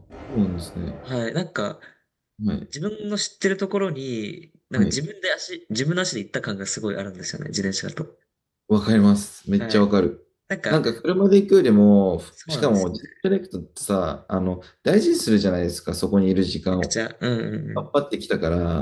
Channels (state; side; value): identical; both; correlation 1.00